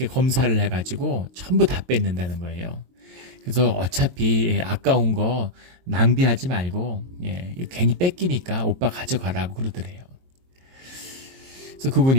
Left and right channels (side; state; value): left; late; 22 ms